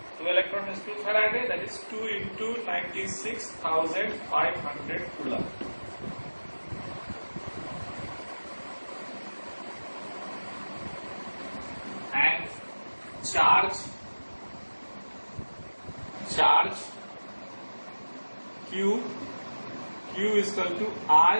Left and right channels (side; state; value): both; inverted; correlation -1.00